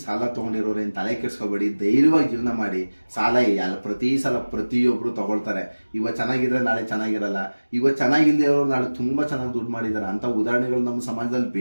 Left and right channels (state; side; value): inverted; both; correlation -1.00